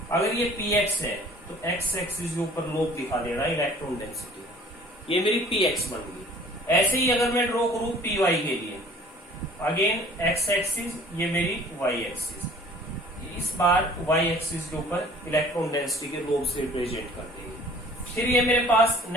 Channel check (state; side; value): normal; both; correlation 0.51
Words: अगर ये px है तो x एक्सिस के ऊपर लोब दिखा दे रहा है इलेक्ट्रॉन डेंसिटी, ये मेरी px बन गई। ऐसे ही अगर मैं ड्रॉ करूं py के लिए, अगेन x एक्सिस, ये मेरी y एक्सिस, इस बार y एक्सिस के ऊपर इलेक्ट्रॉन डेंसिटी के लोब से रिप्रेजेंट कर देंगे। फिर ये मेरे पास